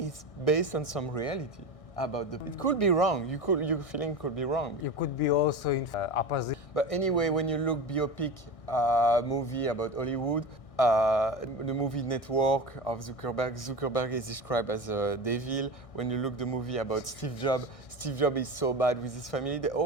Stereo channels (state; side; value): late; right; 1.6 ms